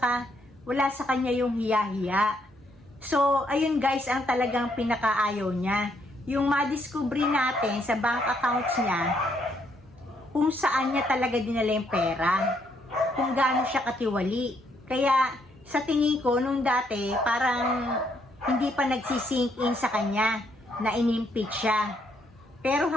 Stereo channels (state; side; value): normal; both; correlation 0.72